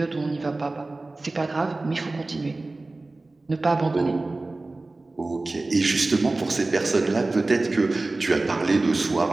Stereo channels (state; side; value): quieter; left; 3.1 dB